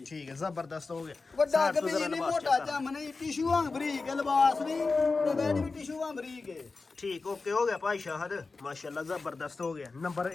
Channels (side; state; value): right; quieter; 4.0 dB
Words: ਠੀਕ ਹੈ ਜ਼ਬਰਦਸਤ ਹੋ ਗਿਆ ਵੱਡਾ ਸਾਈਡ ਤੋਂ ਕਿ ਜ਼ਰਾ ਨਹੀਂ ਲਿਬਾਸ ਮੋਟਾ check ਜੰਮ ਨਹੀਂ ਟਿਸ਼ੂ ਵਾਂਗ ਬਰੀਕ ਹੈ, ਲਿਬਾਸ ਵੀ ਤੇ ਬੈਡ ਵੀ ਟਿਸ਼ੂ ਵਾਂਗ ਬਰੀਕ ਹੈ ਠੀਕ ਓਕੇ ਹੋ ਗਿਆ ਭਾਈ ਸ਼ਾਹਦ ਮਾਸ਼ਾਅੱਲਾ ਜ਼ਬਰਦਸਤ ਹੋ ਗਿਆ ਨੰਬਰ